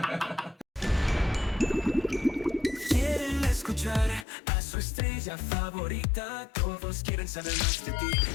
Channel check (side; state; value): right; drops out; at 4.2 s